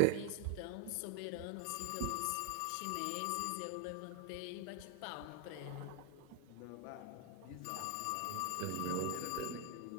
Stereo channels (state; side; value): different; both; correlation 0.01